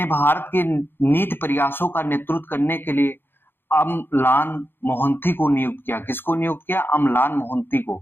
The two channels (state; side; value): late; right; 0.10 ms